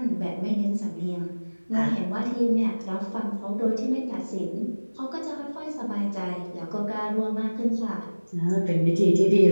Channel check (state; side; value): inverted; both; correlation -1.00